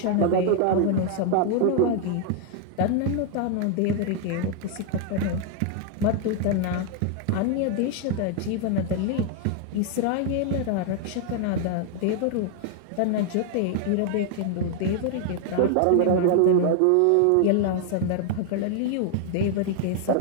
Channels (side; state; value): both; different; correlation 0.00